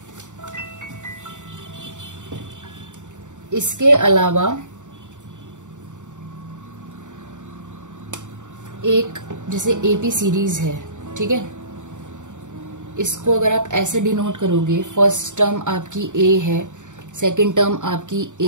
इसके अलावा एक जैसे AP सीरीज है, ठीक है, इसको अगर आप ऐसे डिनोट करोगे, फर्स्ट टर्म आपकी A है, सेकंड टर्म आपकी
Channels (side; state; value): left; late; 0.86 ms